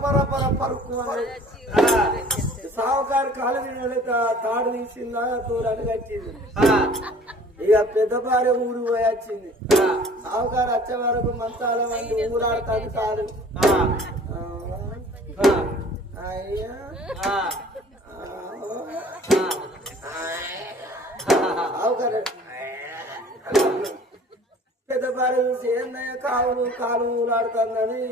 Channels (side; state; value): both; normal; correlation 0.50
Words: పర పర పరుకు సావుకారు కాలు తాడు తీసిందా దూరానికి వచ్చింది. ఇక పెద్ద భార్య ఊరు పోయి వచ్చింది. సావుకారు వచ్చే వరకు మంచాల మంది ఊరాడుతాడు కాదు. అయ్యా సావుకారు పెద్ద భార్య చూసి ఏందయ్యా కాలు ఊరాడుతుందని